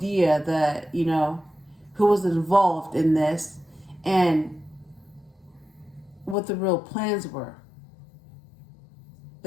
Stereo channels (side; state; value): right; drops out; at 6.4 s